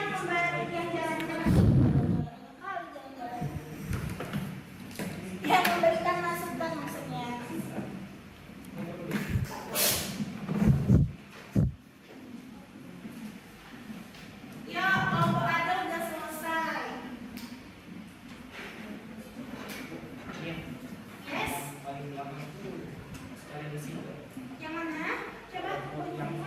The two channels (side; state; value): both; identical; correlation 1.00